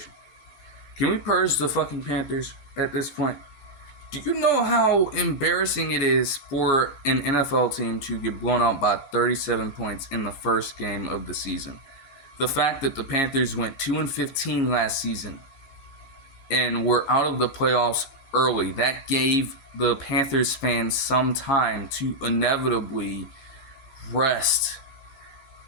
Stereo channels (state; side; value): late; right; 14 ms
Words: Can we purge the fucking Panthers at this point? Do you know how embarrassing it is for an NFL team to get blown out by 37 points in the first game of the season? The fact that the Panthers went 2-15 last season and were out of the playoffs early, that gave the Panthers fans some time to inevitably rest,